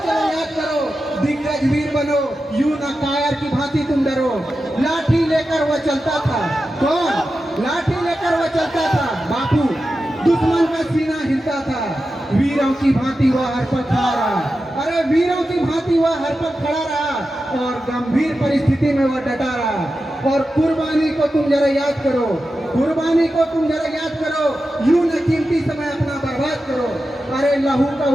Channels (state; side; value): normal; both; correlation 0.92